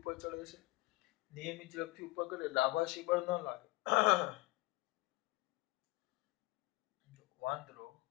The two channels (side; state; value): right; quieter; 20.4 dB